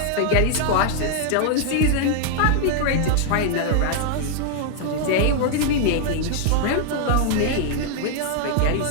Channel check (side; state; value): both; different; correlation 0.00